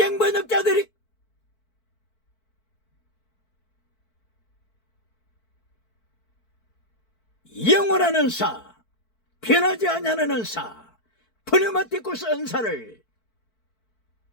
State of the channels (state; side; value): late; right; 4.5 ms